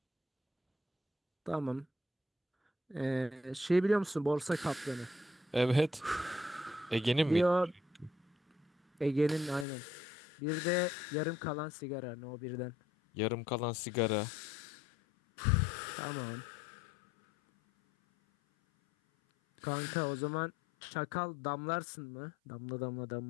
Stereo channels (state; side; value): drops out; right; at 9.7 s